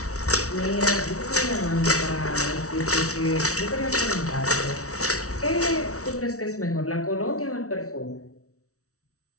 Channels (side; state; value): right; late; 0.64 ms